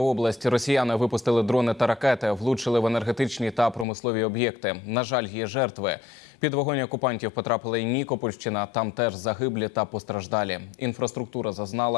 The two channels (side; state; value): right; drops out; at 3.9 s